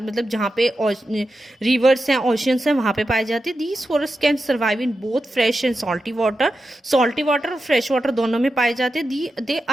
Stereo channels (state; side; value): normal; both; correlation 0.90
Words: जहाँ पे rivers हैं, oceans हैं, वहाँ पे पाए जाते हैं। These forests can survive in both fresh and salty water, और fresh water दोनों में पाए जाते हैं। They